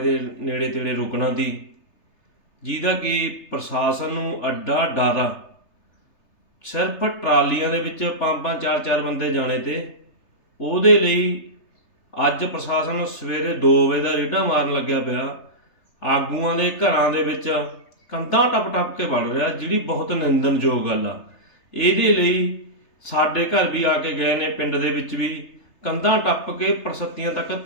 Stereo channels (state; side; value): late; right; 3.3 ms